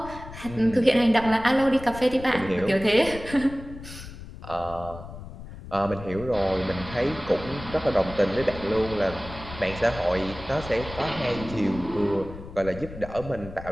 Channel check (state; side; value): noise; left; rumble, 13 dB below the sound